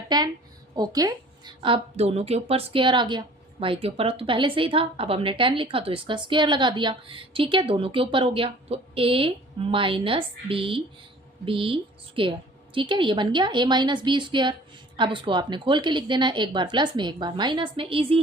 10। ओके, अब दोनों के ऊपर स्क्वायर आ गया, y के ऊपर तो पहले से ही था, अब हमने 10 लिखा तो इसका स्क्वायर लगा दिया। ठीक है, दोनों के ऊपर हो गया, तो a माइनस बी स्क्वायर। ठीक है, ये बन गया a माइनस बी स्क्वायर। अब उसको आपने खोल के लिख देना है, एक बार प्लस में एक बार माइनस में, ईजी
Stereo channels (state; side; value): normal; both; correlation 0.49